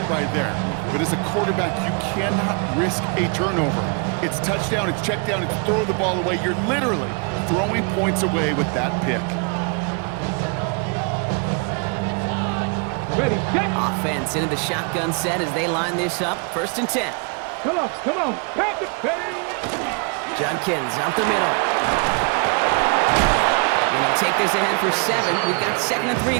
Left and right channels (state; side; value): quieter; left; 35.5 dB